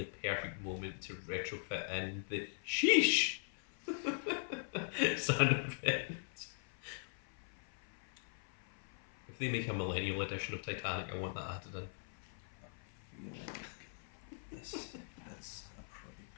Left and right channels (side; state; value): right; silent; 50 dB below the other